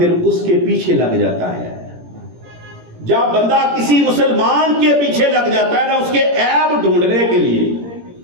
اس کے پیچھے لگ جاتا ہے۔ جب بندہ کسی مسلمان کے پیچھے لگ جاتا ہے نا اس کے عیب ڈھونڈنے کے لیے،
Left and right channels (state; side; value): late; left; 17 ms